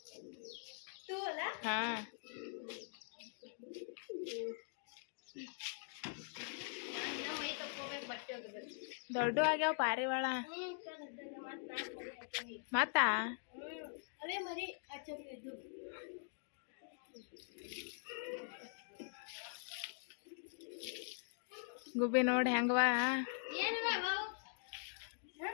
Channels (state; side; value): silent; right; digital silence